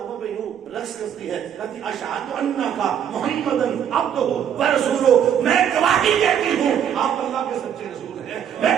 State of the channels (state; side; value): quieter; left; 9.0 dB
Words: پہ یوں رقص کرتی ہے، کہتی اشہد انک محمدن عبدہ و رسولہ، میں گواہی دیتی ہوں آپ اللہ کے سچے رسول ہیں، میں